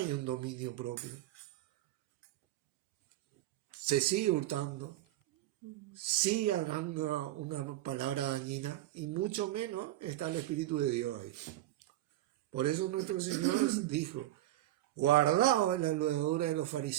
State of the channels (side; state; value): left; quieter; 14.7 dB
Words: un dominio propio. Se sigue hurtando, sigue hablando una palabra dañina, y mucho menos está el Espíritu de Dios ahí. Por eso nuestro Señor dijo, guardaos en la levadura de los